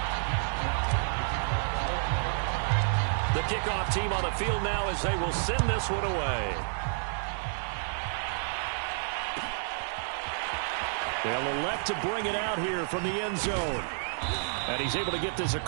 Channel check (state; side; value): silent; left; digital silence